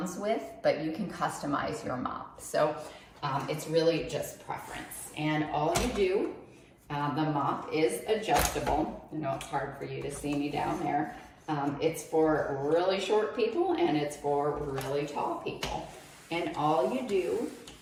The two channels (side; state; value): both; identical; correlation 1.00